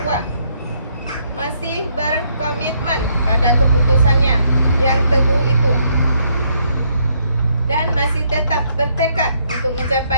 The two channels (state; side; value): inverted; both; correlation -0.71